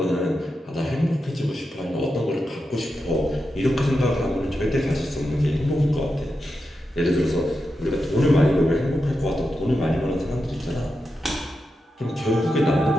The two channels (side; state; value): both; normal; correlation 0.88